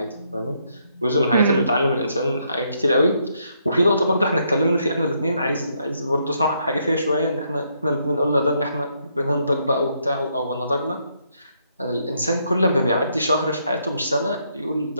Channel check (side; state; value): both; inverted; correlation -0.74